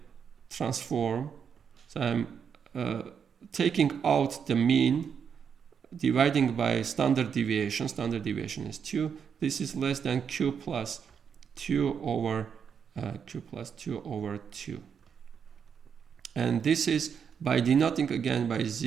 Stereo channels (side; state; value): left; quieter; 7.1 dB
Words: transform. So I'm taking out the mean, dividing by standard deviation. Standard deviation is 2. This is less than Q plus 2 over 2. And this is by denoting again by